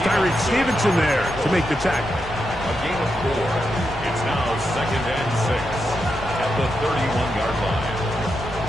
Tyreek Stevenson there to make the tackle. A gain of 4. It's now 2nd and 6 at the 31-yard line.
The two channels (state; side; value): noise; left; rumble, 15 dB below the sound